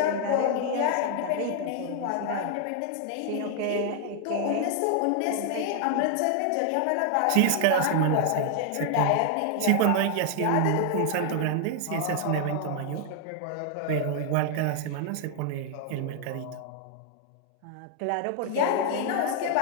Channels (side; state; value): both; different; correlation 0.00